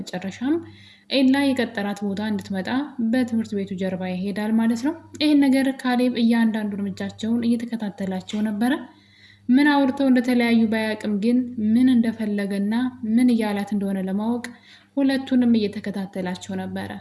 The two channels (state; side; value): identical; both; correlation 1.00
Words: ኤላ የቀጠራት ቦታ እንድትመጣ በትምህርት ቤቱ ጀርባ ይሄዳል ማለት ነው። ይህን ነገር ካሌብ እያንዳንዱ እርምጃቸውን እየተከታተላቸው ነበረ። ምን አውርተው እንደተለያዩ ባያቅም ግን ምን እንደፈለገና ምን እያላት እንደሆነ ለማወቅ ሁለቱንም እየተከታተላቸው ነበረ።